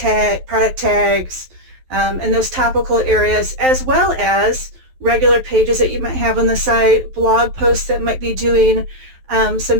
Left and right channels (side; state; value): left; late; 11 ms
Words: product tags and those topical areas, as well as regular pages that you might have on the site, blog posts that might be doing